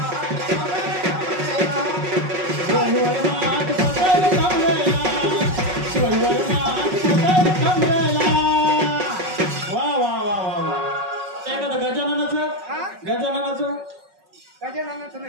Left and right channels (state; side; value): late; left; 5.4 ms